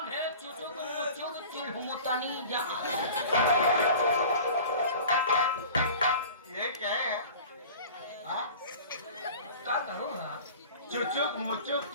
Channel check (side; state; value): both; inverted; correlation -0.41